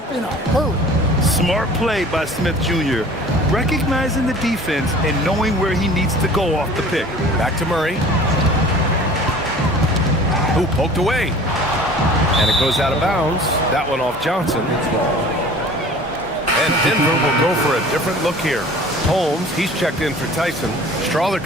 in a hurry. Smart play by Smith Jr., recognizing the defense and knowing where he needs to go off the pick. Back to Murray. Who poked away. And it goes out of bounds. That one off Johnson. And Denver will go for a different look here. Holmes, he's checked in for Tyson. Strawler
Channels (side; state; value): both; normal; correlation 0.45